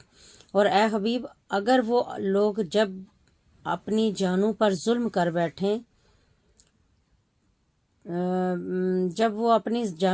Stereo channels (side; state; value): both; identical; correlation 1.00